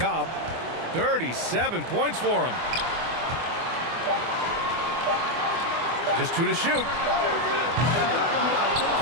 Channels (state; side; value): late; left; 24 ms